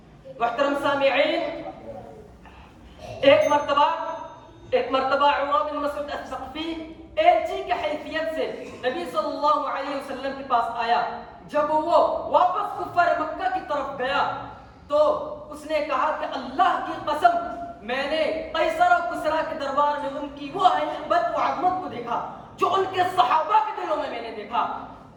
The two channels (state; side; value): identical; both; correlation 1.00